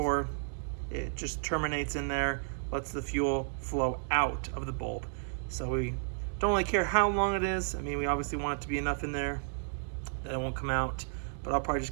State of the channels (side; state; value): left; silent; digital silence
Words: it just terminates in there, lets the fuel flow out of the bulb. So we don't really care how long it is. I mean, we obviously want it to be enough in there that it won't come out, but I'll probably